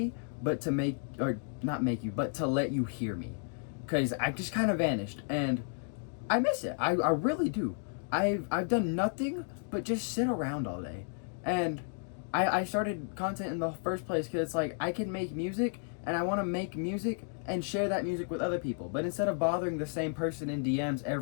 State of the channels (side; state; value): right; silent; 56 dB below the other